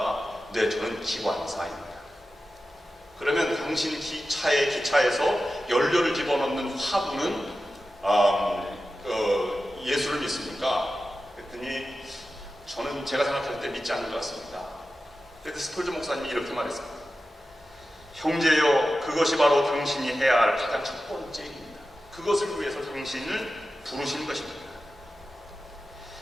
네, 저는 기관사입니다. 그러면 당신 기차에서 연료를 집어넣는 화분은 예수를 믿습니까? 그랬더니 저는 제가 생각할 때 믿지 않는 것 같습니다. 그래서 스펄전 목사님이 이렇게 말했습니다. 형제여, 그것이 바로 당신이 해야 할 가장 첫 번째 일입니다. 그것을 위해서 당신을 부르신 것입니다.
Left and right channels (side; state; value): both; normal; correlation 0.93